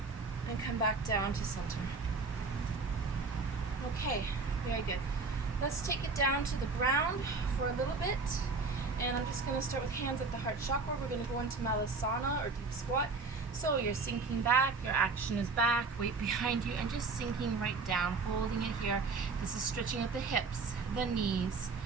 And come back down to center. Okay, very good. Let's take it down to the ground for a little bit. And I'm just going to start with hands at the heart chakra. We're going to go into Malasana or deep squat. So you're sinking back, your action is back, weight behind you, and just sinking right down, holding it here. This is stretching at the hips, the knees,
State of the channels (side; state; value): left; quieter; 4.2 dB